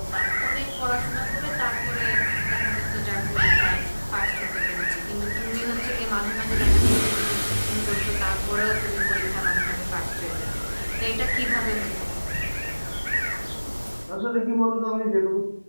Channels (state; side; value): inverted; both; correlation -1.00